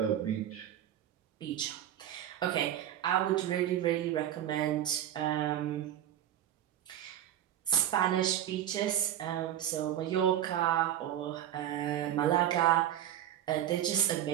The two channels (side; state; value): left; quieter; 11.3 dB